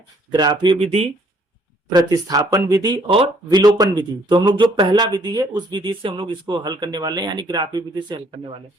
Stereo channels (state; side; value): normal; both; correlation 0.64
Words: ग्राफीय विधि, प्रतिस्थापन विधि और विलोपन विधि। तो हम लोग जो पहला विधि है उस विधि से हम लोग इसको हल करने वाले हैं, यानी ग्राफीय विधि से हल करने वाले हैं।